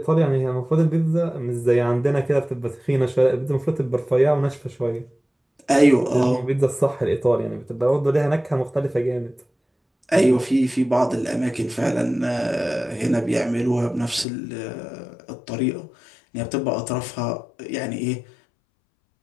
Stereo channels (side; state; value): right; drops out; at 14.2 s